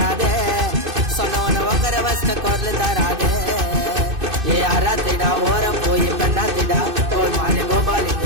சொன்னவன உக்கர வசன குரல் தராதே ஏ அராத்திடா ஓரம் போய் பெண்ணாத்திடா கோல்மாலே கோபாலி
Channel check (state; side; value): late; left; 2.6 ms